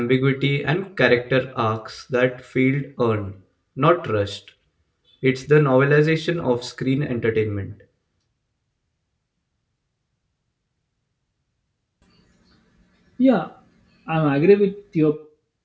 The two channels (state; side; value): identical; both; correlation 1.00